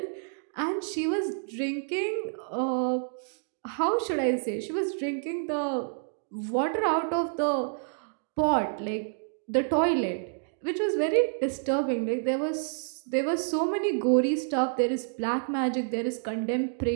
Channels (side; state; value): left; silent; digital silence